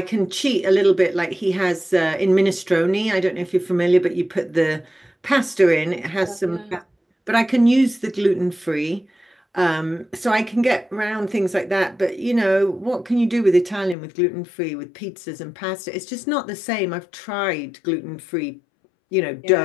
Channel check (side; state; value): right; drops out; at 14.0 s